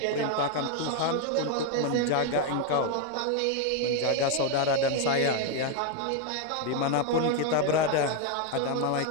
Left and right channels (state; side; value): different; both; correlation 0.01